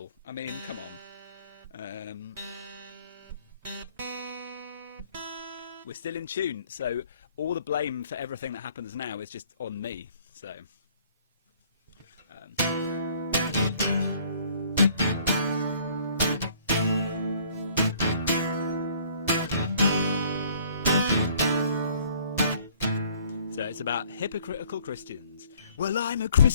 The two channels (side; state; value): both; inverted; correlation -0.58